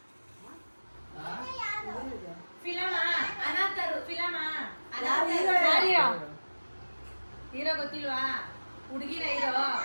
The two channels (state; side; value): inverted; both; correlation -1.00